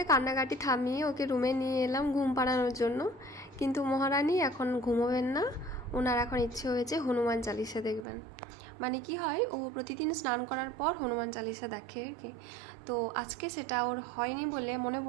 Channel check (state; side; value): drops out; left; at 8.1 s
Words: কান্নাকাটি থামিয়ে ওকে রুমে নিয়ে এলাম ঘুম পাড়ানোর জন্য। কিন্তু মহারানী এখন ঘুমোবেন না, ওনার এখন ইচ্ছে হয়েছে হনুমান চালিসা দেখবেন। মানে কি হয়, ও প্রতিদিন স্নান করার পর হনুমান চালিসা দেখে আর কি। তো আজকে সেটা ওর হয়নি বলে মনে